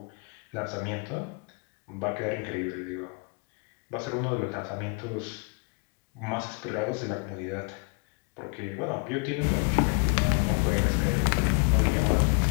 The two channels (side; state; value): right; quieter; 34.5 dB